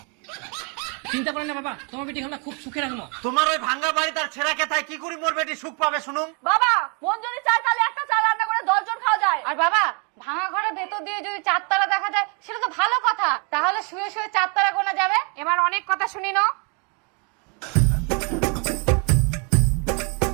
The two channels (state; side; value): quieter; left; 34.3 dB